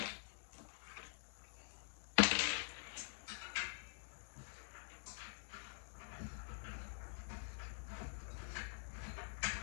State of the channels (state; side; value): silent; right; digital silence